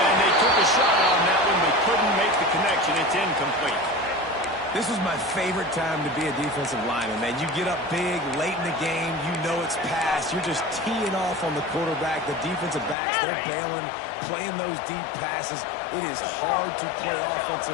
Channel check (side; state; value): right; drops out; at 13.0 s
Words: they took a shot on that one, but couldn't make the connection. It's incomplete. This was my favorite time to be a defensive lineman, man. You get up big, late in the game, you know it's past. You're just teeing off on the quarterback. The defensive backs, they're bailing, playing those deep passes. It is hard to play